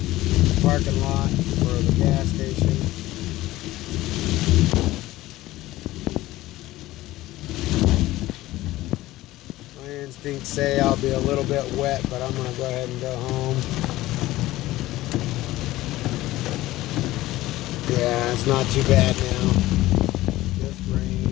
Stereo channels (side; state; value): right; quieter; 16.9 dB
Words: parking lot for the gas station. My instincts say I'll be a little bit wet, but I'm going to go ahead and go home. Yeah, it's not too bad now. Just rain,